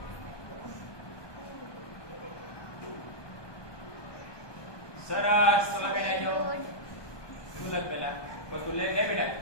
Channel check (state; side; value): late; right; 1.2 ms